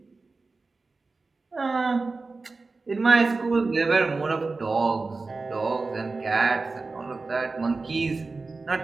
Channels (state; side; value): quieter; left; 3.8 dB